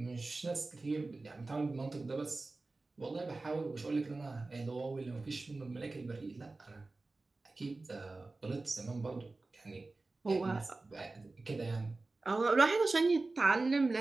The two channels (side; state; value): left; quieter; 3.4 dB